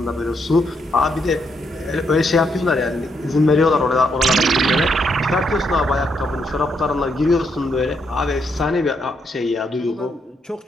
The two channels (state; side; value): normal; both; correlation 0.77